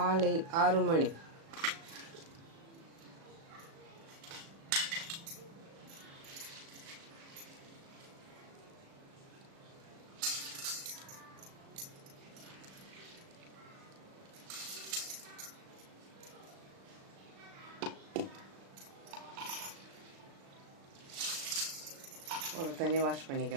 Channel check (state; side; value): late; left; 36 ms